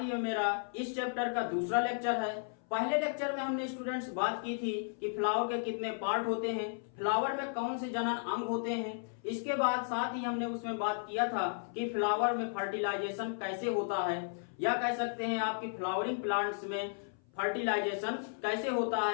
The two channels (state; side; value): silent; right; 55 dB below the other